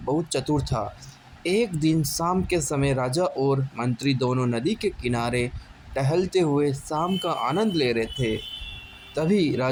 चतुर था। एक दिन शाम के समय राजा और मंत्री दोनों नदी के किनारे टहलते हुए शाम का आनंद ले रहे थे। तभी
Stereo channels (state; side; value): identical; both; correlation 1.00